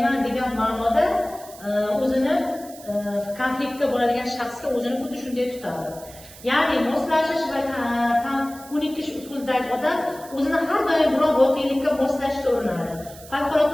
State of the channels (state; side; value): noise; right; hiss, 19 dB below the sound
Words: degan ma'noda o'zini konfliktda bo'ladigan shaxsga o'zini xuddi shunday tutadi. Ya'ni moslashish va ko'nikish usulidagi odam o'zini har doim biror voqelikka moslashga urinadi.